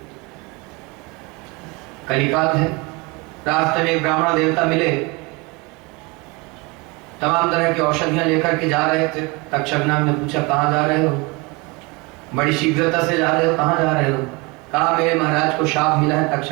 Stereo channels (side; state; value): left; quieter; 26.7 dB